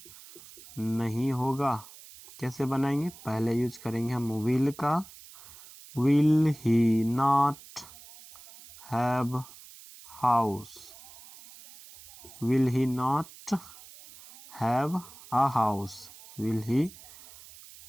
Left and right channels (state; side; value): noise; right; hiss, 19 dB below the sound